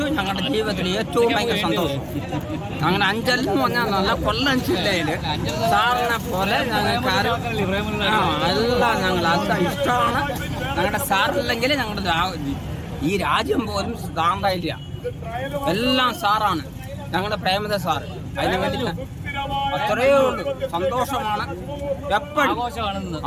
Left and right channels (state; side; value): identical; both; correlation 1.00